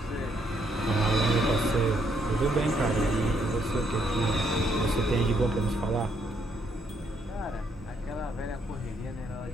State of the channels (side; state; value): both; normal; correlation 0.73